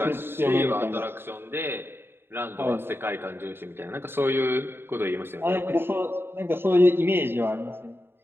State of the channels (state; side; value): late; left; 0.11 ms